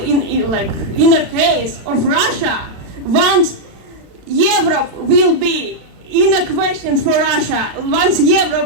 a case of Russia, once Europe will be in a question for Russia, once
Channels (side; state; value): left; late; 35 ms